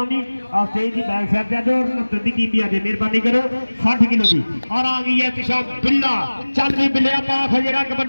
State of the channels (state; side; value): inverted; both; correlation -1.00